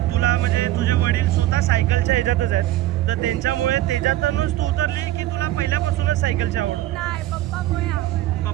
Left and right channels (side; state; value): left; quieter; 14.8 dB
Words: तुला म्हणजे तुझे वडील स्वतः सायकलच्या ह्याच्यातच आहेत, तर त्यांच्यामुळे त्याच्यातूनच तू उतरली की तुला पहिल्यापासूनच सायकलची आवड? नाही,